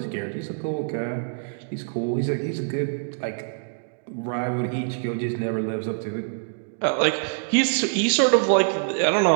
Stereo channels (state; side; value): silent; left; digital silence